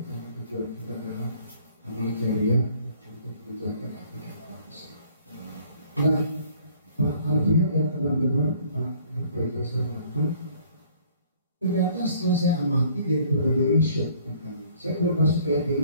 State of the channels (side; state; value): both; inverted; correlation -0.57